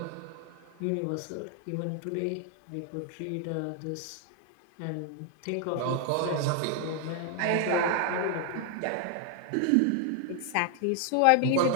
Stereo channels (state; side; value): different; both; correlation 0.00